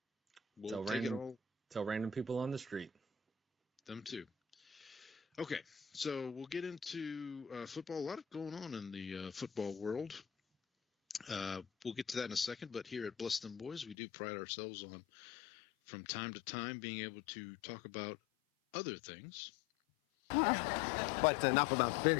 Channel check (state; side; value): drops out; right; at 14.0 s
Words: We'll take it all. Tell random people on the street. Them too. Okay, so we'll get into football. A lot going on in the football world. We'll get to that in a second, but here at Bless Them Boys, we do pride ourselves on, from time to time, being able to talk about other things. But enough about